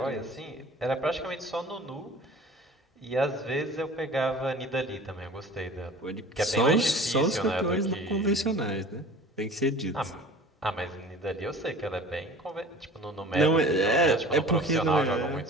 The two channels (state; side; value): normal; both; correlation 0.43